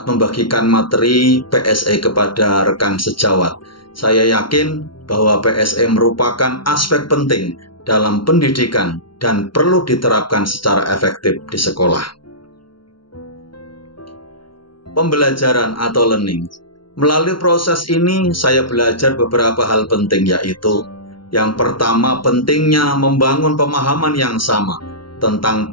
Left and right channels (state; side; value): late; right; 0.73 ms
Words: membagikan materi PSE kepada rekan sejawat. Saya yakin bahwa PSE merupakan aspek penting dalam pendidikan dan perlu diterapkan secara efektif di sekolah. Pembelajaran atau learning. Melalui proses ini, saya belajar beberapa hal penting, yaitu yang pertama, pentingnya membangun pemahaman yang sama tentang